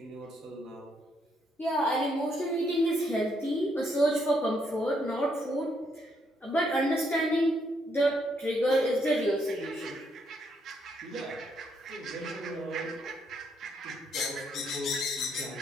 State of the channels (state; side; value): normal; both; correlation 0.74